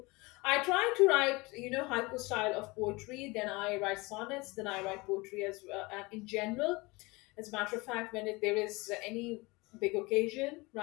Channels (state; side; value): quieter; right; 24.3 dB